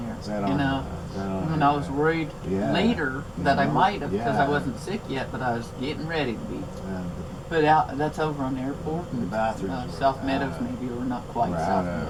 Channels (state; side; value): identical; both; correlation 1.00